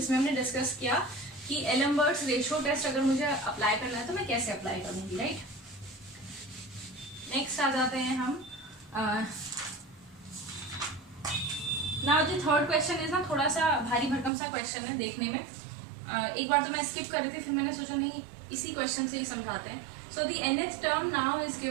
हमने डिस्कस किया कि एलम्बर्ट्स रेशियो टेस्ट अगर मुझे अप्लाई करना है तो मैं कैसे अप्लाई करूँगी. राइट, नेक्स्ट आ जाते हैं हम. Now the third question is ना थोड़ा सा भारी भरकम सा क्वेश्चन है देखने में. एक बार तो मैं स्किप कर रही थी, फिर मैंने सोचा नहीं इसी क्वेश्चन से ही समझाते हैं. So the nth term now is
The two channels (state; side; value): drops out; left; at 14.3 s